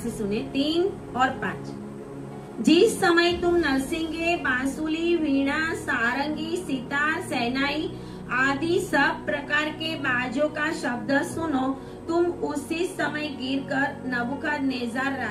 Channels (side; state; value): both; identical; correlation 1.00